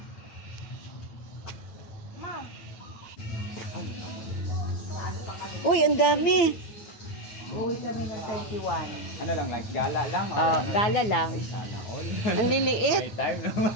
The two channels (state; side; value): late; right; 9.6 ms